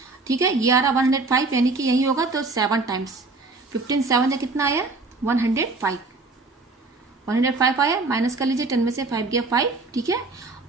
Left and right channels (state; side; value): quieter; left; 3.6 dB